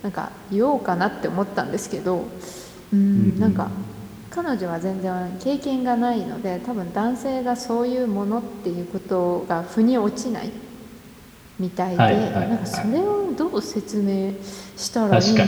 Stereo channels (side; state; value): both; identical; correlation 1.00